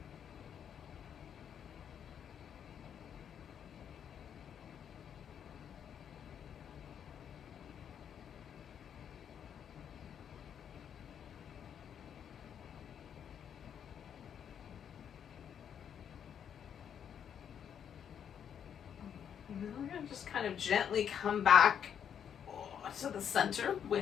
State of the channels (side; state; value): right; quieter; 8.5 dB